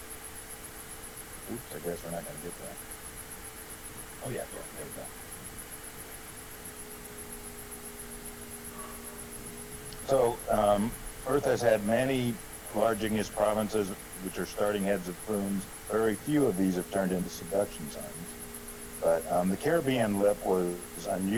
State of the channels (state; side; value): identical; both; correlation 1.00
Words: Oops, I guess we're not going to get that. Oh yeah, there we go. So Earth has had many large igneous provinces, which are starting heads of plumes. Very few of these have turned into subduction zones. But the Caribbean lip was